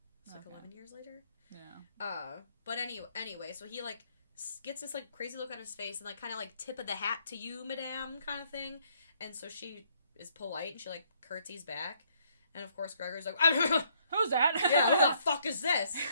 It's like 11 years later. Yeah. But anyway, so he, like, gets this, like, crazy look on his face and, like, kind of, like, tip of the hat to you, madame, kind of thing. And so she is polite and she, like, curtsies back. And, of course, Gregor's like, who's that? Yeah, who the fuck is this?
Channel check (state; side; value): inverted; both; correlation -0.68